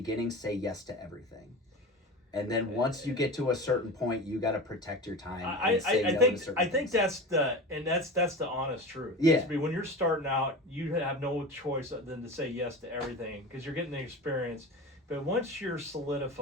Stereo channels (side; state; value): both; normal; correlation 0.30